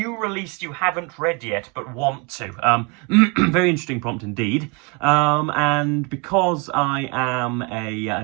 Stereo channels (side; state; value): left; quieter; 31.2 dB